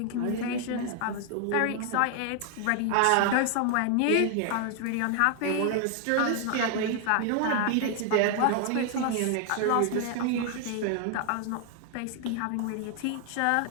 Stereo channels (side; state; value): both; different; correlation 0.00